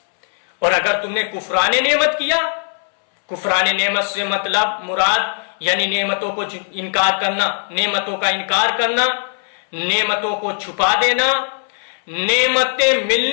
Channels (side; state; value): right; silent; 64 dB below the other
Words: اور اگر تم نے کفران نعمت کیا، کفران نعمت سے مطلب مراد یعنی نعمتوں کو انکار کرنا، نعمتوں کا انکار کرنا، نعمتوں کو چھپا دینا، نعمتیں